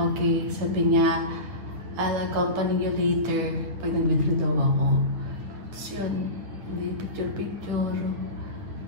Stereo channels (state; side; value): late; left; 9.4 ms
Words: Sabi niya, I'll accompany you later pag nag-withdraw daw ako. Tapos yun, hindi picture-picture.